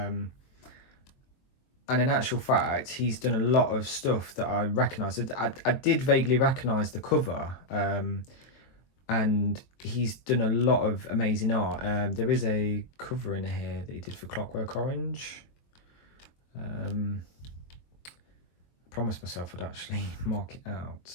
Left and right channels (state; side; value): late; right; 22 ms